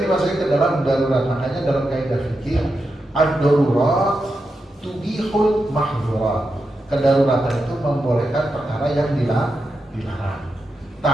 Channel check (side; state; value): both; normal; correlation 0.87